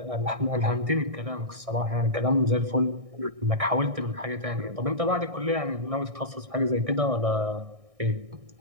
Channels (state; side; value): late; left; 1.6 ms